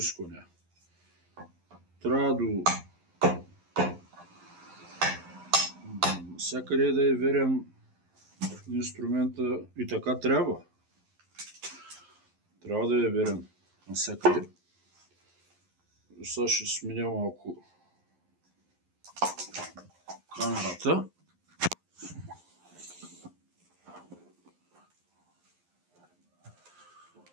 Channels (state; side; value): late; left; 11 ms